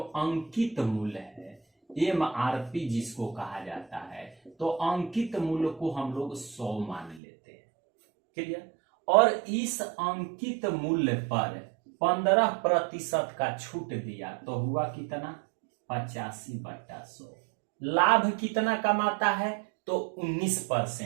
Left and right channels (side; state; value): left; drops out; at 7.2 s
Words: अंकित मूल्य है, MRP जिसको कहा जाता है, तो अंकित मूल्य को हम लोग 100 मान लेते हैं। क्लियर। और इस अंकित मूल्य पर 15% का छूट दिया तो हुआ कितना, 85/100। लाभ कितना कमाता है, तो